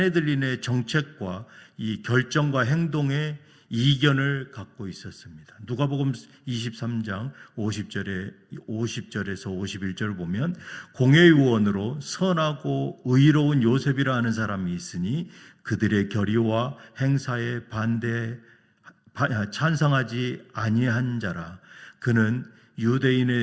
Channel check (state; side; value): identical; both; correlation 1.00